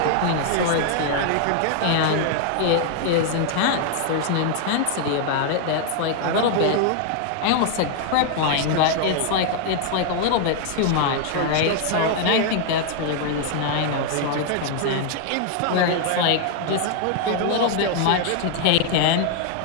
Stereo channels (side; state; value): both; different; correlation 0.00